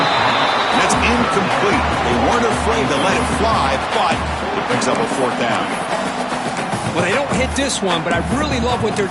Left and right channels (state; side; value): identical; both; correlation 1.00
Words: And that's incomplete. They weren't afraid to let it fly, but it picks up a fourth down. Well, they don't hit this one, but I really love what they're